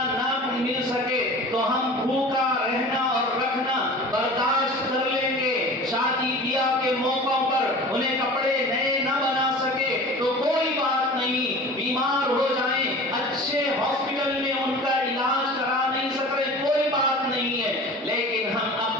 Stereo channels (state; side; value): normal; both; correlation 0.39